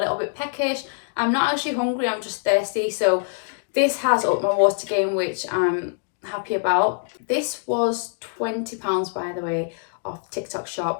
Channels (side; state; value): right; silent; digital silence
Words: bit peckish, I'm not actually hungry, I'm just thirsty. So this has upped my water gain, which I'm happy about. This was £20, by the way, off TikTok